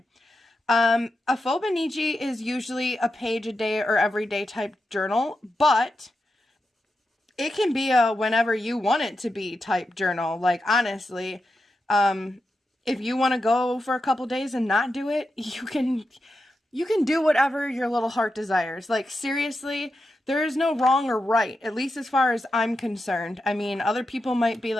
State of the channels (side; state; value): both; normal; correlation 0.88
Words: A Fauxbonichi is usually a page a day or everyday type journal, but it can be a whenever you want it to be type journal. Like, honestly, if you want to go for a couple days and not do it, you can do whatever your little heart desires. Like, seriously, there is no wrong or right, at least as far as I'm concerned. I mean, other people might be